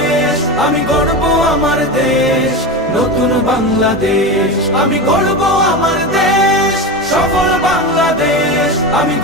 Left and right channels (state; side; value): normal; both; correlation 0.22